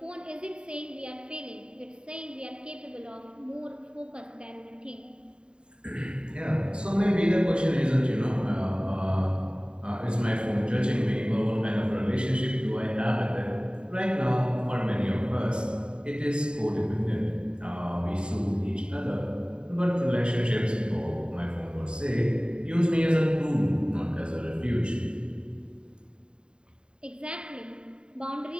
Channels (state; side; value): late; left; 0.050 ms